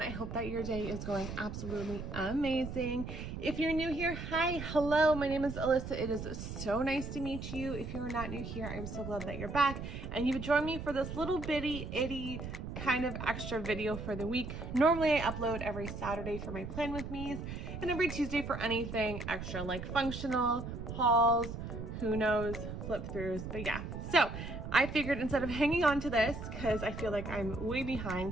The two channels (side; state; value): right; noise; rumble, 7 dB below the sound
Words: I hope that your day is going absolutely amazing. If you're new here, hi, hello. My name is Alyssa. It is so nice to meet you. If you're not new here, I'm so glad that you're back and you've joined me for this little bitty itty kind of extra video for the week. Normally I upload every Saturday for my plan with me's and every Tuesday for anything extra like functional, hauls, who knows, flip throughs, but yeah. So I figured instead of hanging on to this, because I feel like I'm way